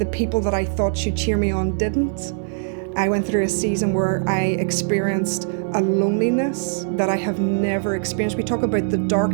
people that I thought should cheer me on didn't. I went through a season where I experienced a loneliness that I have never experienced. We talk about the dark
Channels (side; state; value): left; silent; digital silence